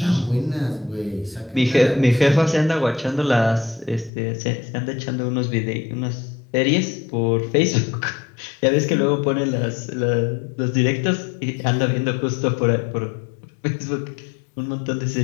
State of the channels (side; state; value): right; drops out; at 4.1 s